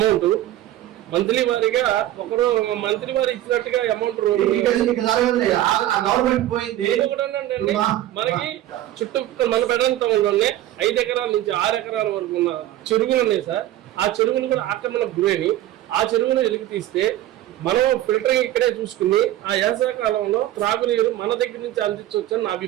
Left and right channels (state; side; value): quieter; left; 13.9 dB